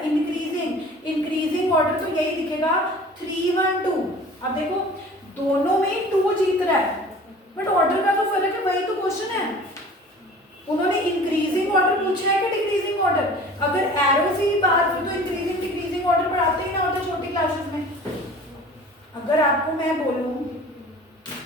इंक्रीजिंग। इंक्रीजिंग ऑर्डर तो यही दिखेगा 3 1 2। अब देखो दोनों में 2 जीत रहा है, बट ऑर्डर का तो फर्क है, वही तो क्वेश्चन है। उन्होंने इंक्रीजिंग ऑर्डर पूछा है कि डिक्रीजिंग ऑर्डर? अगर एरो से ही बात हुई तो इंक्रीजिंग डिक्रीजिंग ऑर्डर पढ़ाते ही ना होते छोटी क्लासेस में। अगर आपको मैं बोलूं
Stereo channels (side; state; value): both; normal; correlation 0.44